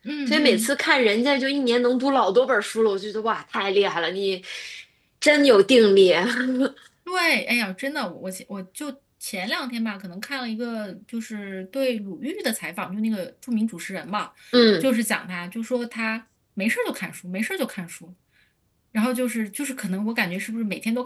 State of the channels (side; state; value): both; identical; correlation 1.00